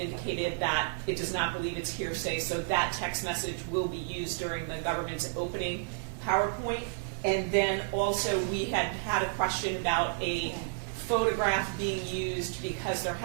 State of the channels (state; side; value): silent; left; digital silence